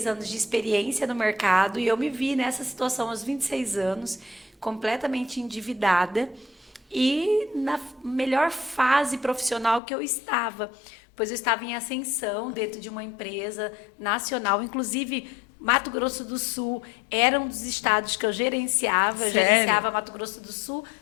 anos de experiência no mercado, e eu me vi nessa situação aos 26 anos, completamente endividada e na melhor fase profissional que eu estava, pois eu estava em ascensão dentro de uma empresa nacional, inclusive Mato Grosso do Sul era um dos estados que eu gerenciava. Eu gerenciava Mato Grosso do Sul,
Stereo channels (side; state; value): right; drops out; at 9.8 s